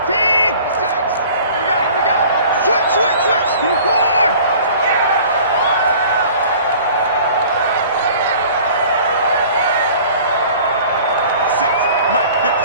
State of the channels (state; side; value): inverted; both; correlation -0.47